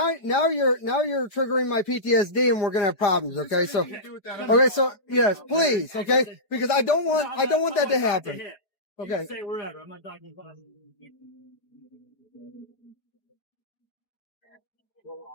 triggering my PTSD, and we're gonna have problems. Okay, so yes, please, okay, because I don't want that to happen. Okay. Say wherever. I'm not talking about.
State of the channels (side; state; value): right; late; 4.8 ms